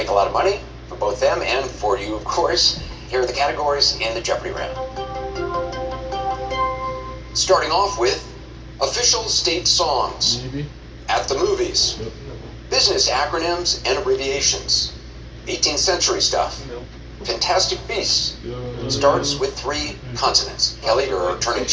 a lot of money for both them and for you, of course. Here are the categories in the Jeopardy round. Starting off with official state songs. Maybe. At the movies. Yep. Business acronyms and abbreviations. 18th century stuff. Fantastic Beasts. Starts with 3 consonants. Kelly, you're a returning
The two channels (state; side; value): identical; both; correlation 1.00